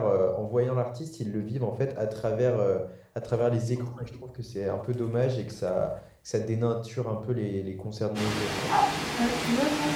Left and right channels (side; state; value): both; identical; correlation 1.00